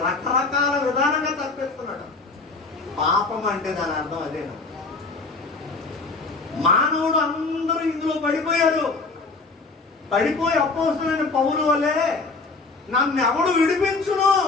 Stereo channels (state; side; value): quieter; right; 3.9 dB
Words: రకరకాల విధానంగా తప్పిస్తున్నాడు. పాపం అంటే దాని అర్థం అదేనా? మానవుడు అందరూ ఇందులో పడిపోయారు. పడిపోయి అపోస్తలుడైన పౌలు వలే నన్ను ఎవడు విడిపించును